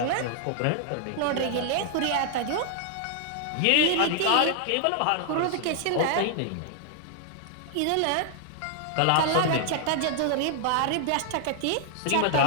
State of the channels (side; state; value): both; different; correlation 0.00